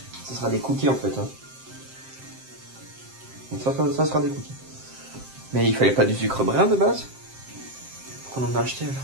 Ce sera des cookies en fait. Hein. Donc ça sera des cookies. Mais il fallait pas du sucre brun de base? Pourquoi on en a acheté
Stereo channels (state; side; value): late; left; 7.6 ms